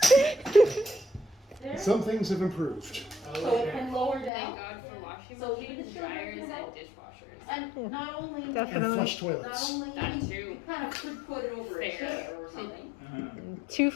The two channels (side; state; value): right; drops out; at 4.3 s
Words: There. Some things have improved. So it can lower Thank down. God for washing So machines, even children dryers, can and help. dishwashers. And not only, And Definitely. flush not toilets. only, That you too. kind of could put it over a Fair. chair or something. Uh-huh. 2